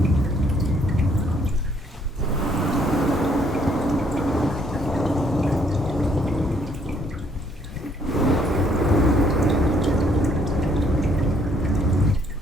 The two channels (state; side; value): normal; both; correlation 0.66